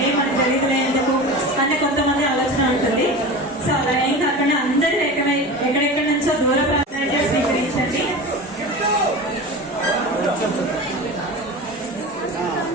మనకు తెలియదులే ఎందుకు అనే కొంతమంది ఆలోచన ఉంటుంది. సో అలా ఏం కాకుండా అందరూ ఏకమై ఎక్కడెక్కడి నుంచో దూర ప్రాంతాన్ని స్వీకరించండి.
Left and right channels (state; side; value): normal; both; correlation 0.31